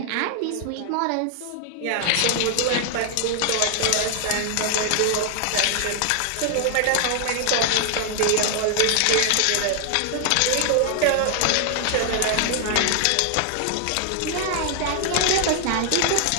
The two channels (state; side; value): different; both; correlation 0.00